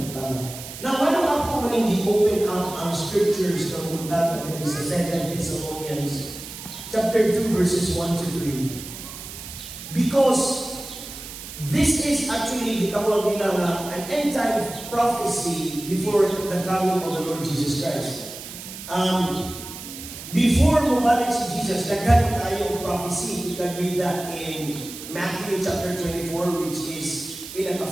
tama. Now, why don't ako maning open up ang scriptures ng bundaga that is sa 2 Thessalonians chapter 2 verses 1 to 3. Because this is actually gitawag nila na an end time prophecy before the coming of the Lord Jesus Christ. Before bumalik si Jesus, daghan tayo prophecy. You can read that in Matthew chapter 24, which is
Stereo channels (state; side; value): noise; right; hiss, 12 dB below the sound